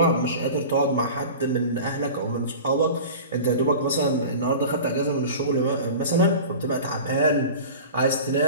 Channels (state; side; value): inverted; both; correlation -0.36